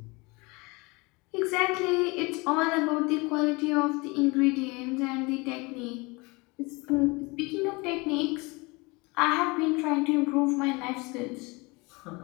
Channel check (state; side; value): quieter; right; 26.0 dB